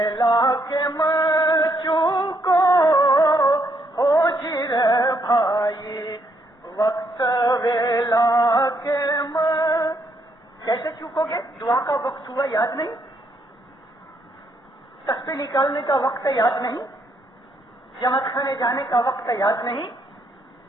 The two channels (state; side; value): normal; both; correlation 0.74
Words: کے چوکو ہو جی رے بھائی, وقت ویلا کے کیسے چوکو گے؟ دعا کا وقت ہوا یاد نہیں, تسبیح نکالنے کا وقت یاد نہیں, جمع کھانے جانے کا وقت یاد نہیں.